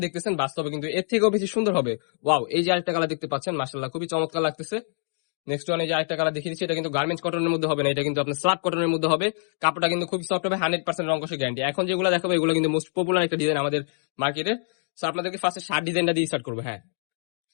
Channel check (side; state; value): right; silent; digital silence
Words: দেখতেছেন বাস্তবে কিন্তু এর থেকেও বেশি সুন্দর হবে। ওয়াও, এই যে আরেকটা কালার দেখতে পাচ্ছেন, মাশাআল্লাহ খুবই চমৎকার লাগতেছে। নেক্সট ওয়ান, এই যে আরেকটা কালার দেখিয়ে দিচ্ছি। এটা কিন্তু গার্মেন্টস কটনের মধ্যে হবে না, এটা কিন্তু আপনার স্ল্যাব কটনের মধ্যে হবে। কাপড়টা কিন্তু খুবই সফট হবে, 100% রং কষে গ্যারান্টি। এখন যেগুলো দেখাবো এগুলো কিন্তু মোস্ট পপুলার একটা ডিজাইন আমাদের মার্কেটে। সো আপনাদেরকে ফার্স্টে শার্ট ডিজাইনটা দিয়ে স্টার্ট করবো। হ্যাঁ,